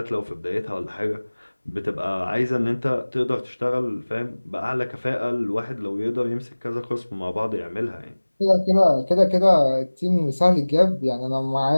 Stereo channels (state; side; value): inverted; both; correlation -1.00